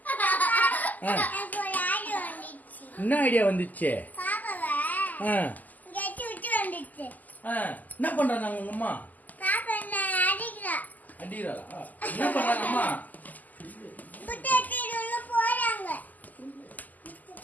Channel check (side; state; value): right; late; 0.081 ms